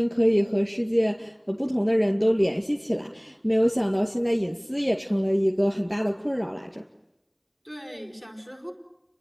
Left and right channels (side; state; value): both; identical; correlation 1.00